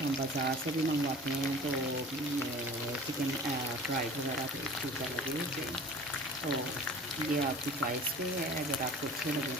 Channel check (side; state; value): both; normal; correlation 0.42